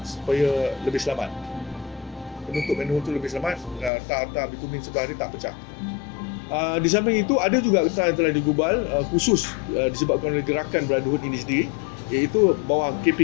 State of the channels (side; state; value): right; drops out; at 3.9 s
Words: supaya lebih selamat. Penutup manhole itu lebih selamat, tar bitumen sebelah dia tak pecah. Di samping itu ada juga akta yang telah digubal khusus disebabkan oleh gerakan Brotherhood ini sendiri, iaitu bawah